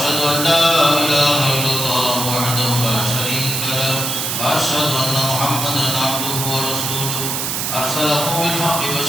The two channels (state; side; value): noise; right; hiss, 1 dB below the sound